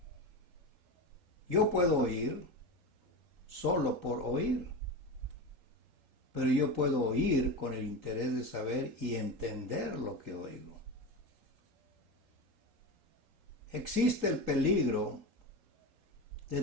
Yo puedo oír solo por oír, pero yo puedo oír con el interés de saber y entender lo que oigo. Existe el peligro de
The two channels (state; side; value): late; left; 3.8 ms